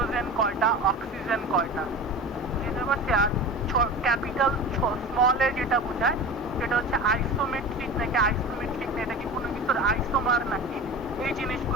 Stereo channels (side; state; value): both; normal; correlation 0.32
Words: কয়টা, অক্সিজেন কয়টা, বুঝতে পারছি? আর ক্যাপিটাল স্মল এ যেটা বোঝায় সেটা হচ্ছে আইসোমেট্রিক নাকি আইসোমেট্রিক না, এটা কি কোনো কিছুর আইসোমার নাকি, এই